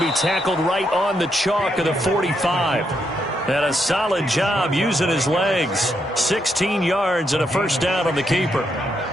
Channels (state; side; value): normal; both; correlation 0.79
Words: tackled right on the chalk of the 45. And a solid job using his legs. 16 yards and a first down on the keeper.